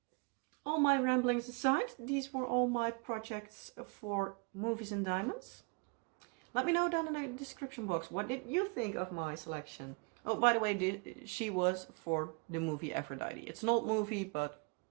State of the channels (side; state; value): left; quieter; 32.8 dB